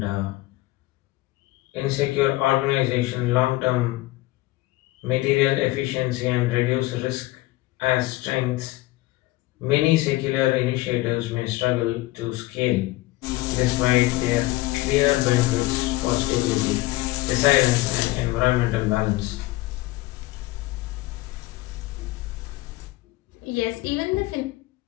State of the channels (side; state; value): right; quieter; 18.9 dB